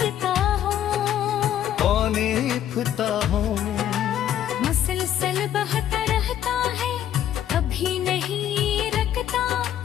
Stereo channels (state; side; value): quieter; right; 10.9 dB